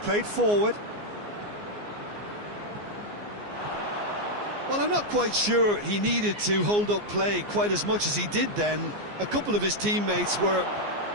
forward. Well, I'm not quite sure he needed to hold up play quite as much as he did then. A couple of his teammates were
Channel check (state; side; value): late; left; 14 ms